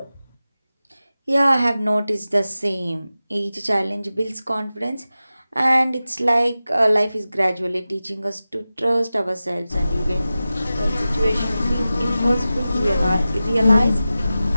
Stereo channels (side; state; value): both; inverted; correlation -0.94